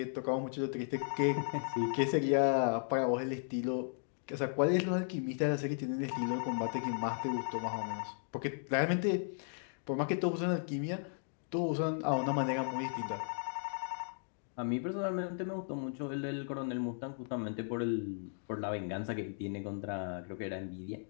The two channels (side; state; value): right; silent; digital silence